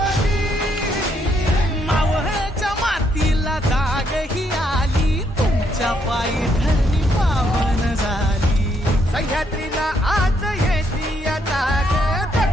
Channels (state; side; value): normal; both; correlation 0.74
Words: मावळच्या मातीला जाग ही आली तुमच्या पायी धरणी पावन झाली सह्याद्रीला आज येती या जाग